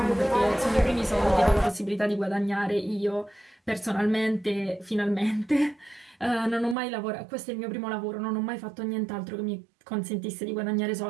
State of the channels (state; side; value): drops out; left; at 6.8 s